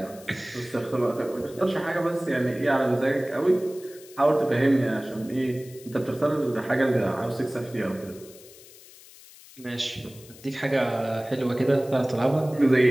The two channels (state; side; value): noise; left; hiss, 21 dB below the sound